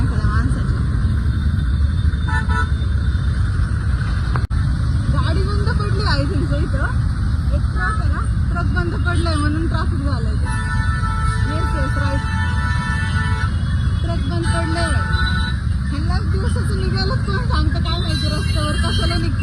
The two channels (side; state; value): both; identical; correlation 1.00